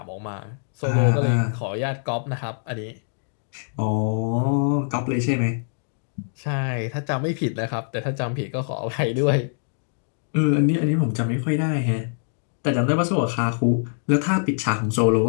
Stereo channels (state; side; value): silent; right; digital silence